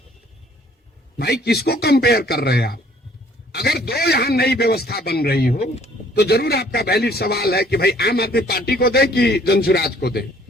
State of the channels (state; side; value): normal; both; correlation 0.59